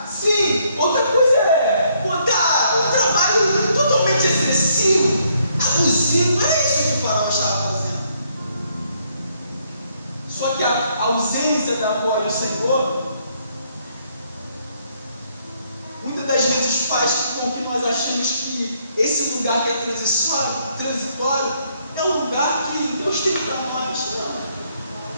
sim, outra coisa é botar um trabalho totalmente excessivo, abusivo. Era isso que o faraó estava fazendo. Só que a ausência da voz do Senhor muitas das vezes faz com que nós achemos que esse lugar que é transitório é um lugar que Deus tem para nós. Não,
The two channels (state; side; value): inverted; both; correlation -0.70